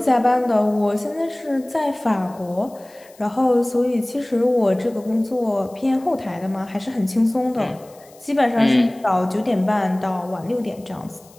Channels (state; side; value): noise; left; hiss, 27 dB below the sound